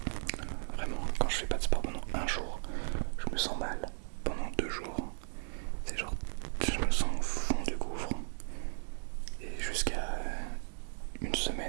Vraiment, quand je fais pas de sport pendant un jour, je me sens mal. Pendant 2 jours, c'est genre, je me sens au fond du gouffre. Et jusqu'à une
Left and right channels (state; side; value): silent; left; digital silence